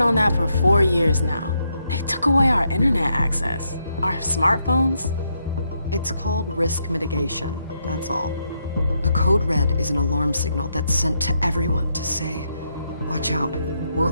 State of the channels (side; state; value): both; inverted; correlation -0.79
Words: that for 4 years now. They took away our internet access. Our smartphones. It's called risk mitigation, that's all. A code red is an alarm signal that's sent to everyone to say, Watch out.